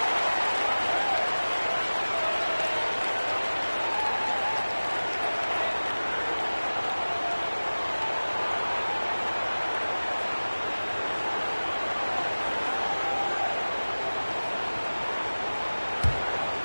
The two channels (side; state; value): both; inverted; correlation -1.00